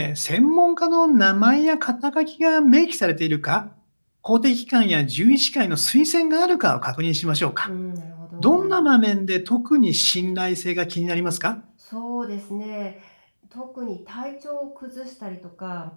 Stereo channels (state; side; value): inverted; both; correlation -1.00